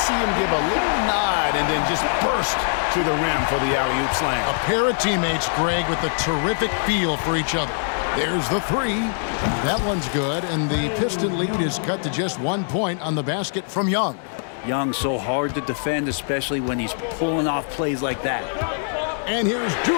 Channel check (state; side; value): silent; right; digital silence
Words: him give a little nod and then just burst to the rim for the alley-oop slam. A pair of teammates, Greg, with a terrific feel for each other. There's the 3. That one's good, and the Piston lead is cut to just 1 point on the basket from Young. Young so hard to defend, especially when he's pulling off plays like that. And here's